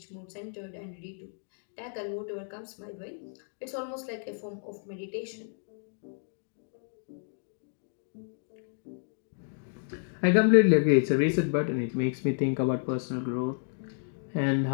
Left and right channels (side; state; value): right; silent; digital silence